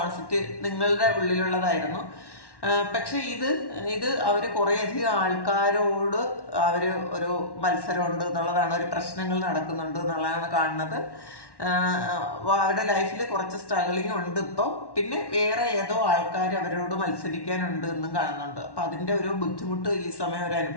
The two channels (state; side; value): late; right; 1.1 ms